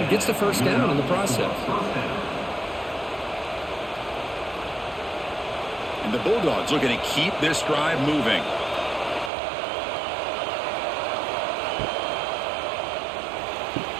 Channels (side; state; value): left; drops out; at 9.3 s